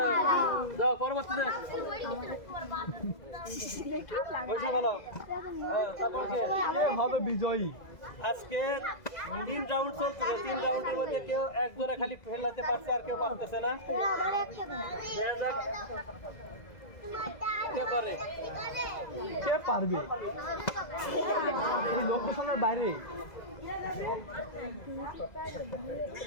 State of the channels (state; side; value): late; right; 2.0 ms